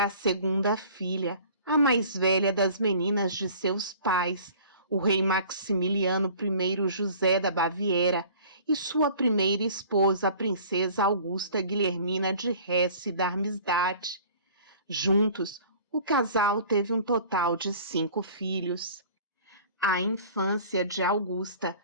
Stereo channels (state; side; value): inverted; both; correlation -0.48